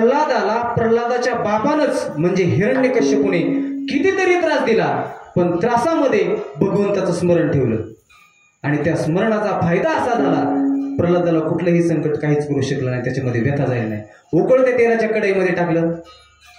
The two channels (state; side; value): identical; both; correlation 1.00